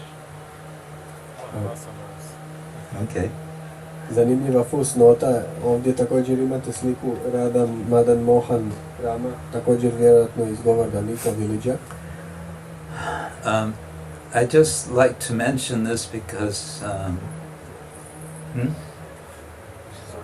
Okay. Zanimljiva fusnota, ovdje također imate sliku Radha Madan Mohan Rama, također vjerojatno iz Govardhan Eco-Village. I just like to mention this because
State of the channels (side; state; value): both; identical; correlation 1.00